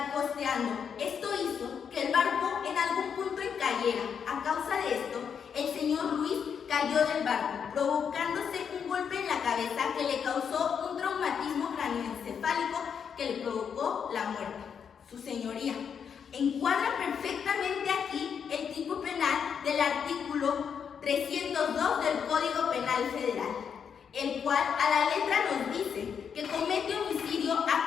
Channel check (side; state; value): right; quieter; 7.2 dB